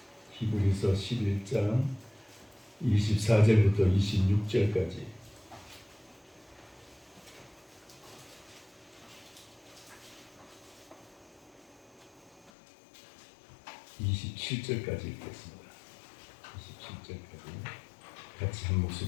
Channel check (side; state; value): right; drops out; at 12.5 s